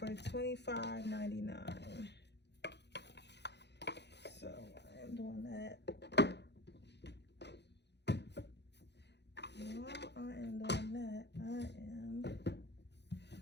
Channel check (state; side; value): late; right; 0.50 ms